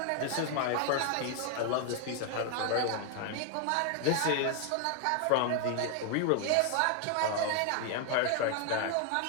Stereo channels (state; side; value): different; both; correlation 0.01